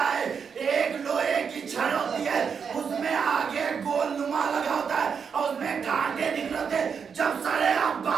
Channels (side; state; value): left; quieter; 6.5 dB